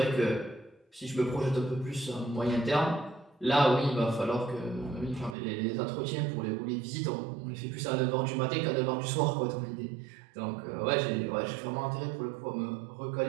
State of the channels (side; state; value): left; drops out; at 5.4 s